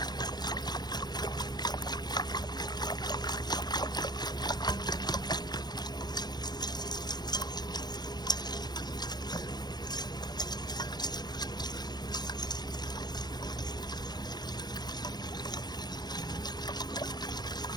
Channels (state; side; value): late; right; 0.20 ms